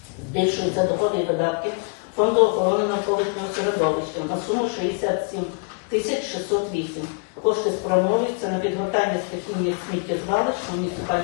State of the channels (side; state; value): right; quieter; 37.4 dB